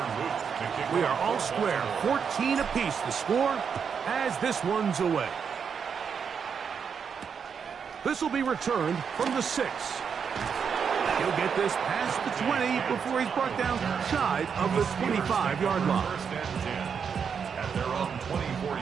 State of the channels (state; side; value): quieter; left; 6.7 dB